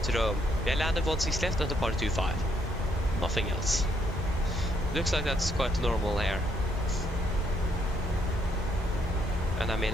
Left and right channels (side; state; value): both; normal; correlation 0.73